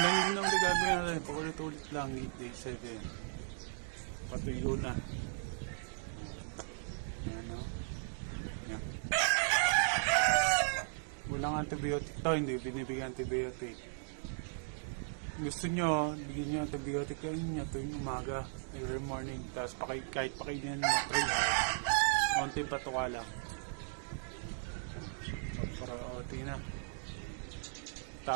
yun ang gagawin natin. Paulit-ulit lang, day 7. Patuyo na. Yan, no? Yan. Walang antibiotic to, hindi binibigyan antibiotic. Gusto nyo, bigyan nyo antibiotic kain nyo tuwing umaga, every morning. Tapos kahit pakainin nyo 3 hours. Konting patuka lang. Para tingnan.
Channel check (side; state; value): left; silent; digital silence